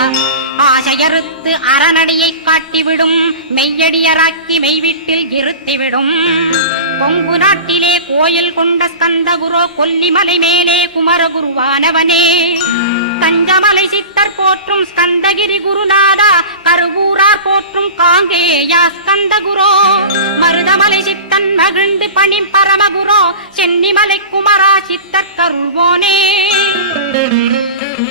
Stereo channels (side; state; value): both; inverted; correlation -0.32